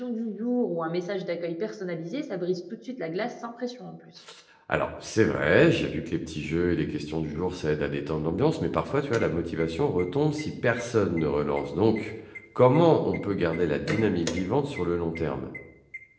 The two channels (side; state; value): both; identical; correlation 1.00